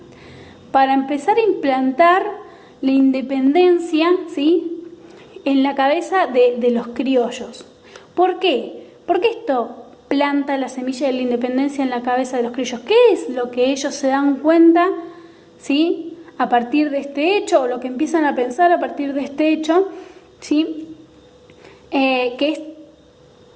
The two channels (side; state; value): both; identical; correlation 1.00